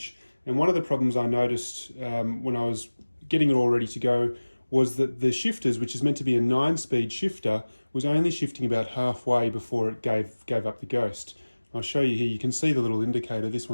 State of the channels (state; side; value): inverted; both; correlation -1.00